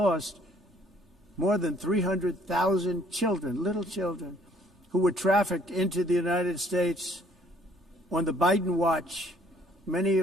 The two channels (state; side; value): normal; both; correlation 0.61